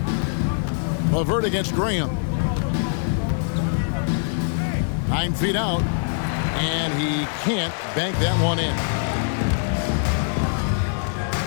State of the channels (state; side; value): silent; right; digital silence